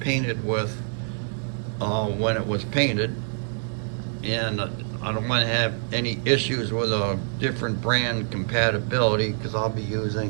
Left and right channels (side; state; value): left; silent; 57 dB below the other